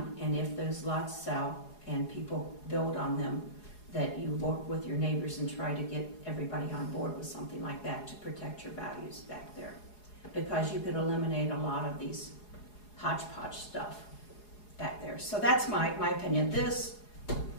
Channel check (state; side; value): late; right; 4.8 ms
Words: and if those lots sell and people build on them, that you work with your neighbors and try to get everybody on board with something like that to protect your values back there. Because you could eliminate a lot of these hodgepodge stuff back there. So that's my opinion. This,